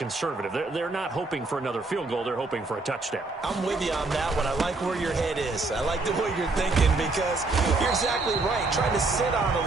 They're not hoping for another field goal. They're hoping for a touchdown. I'm with you on that one. I like where your head is. I like the way you're thinking because you're exactly right. Trying to sit on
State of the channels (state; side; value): quieter; left; 3.5 dB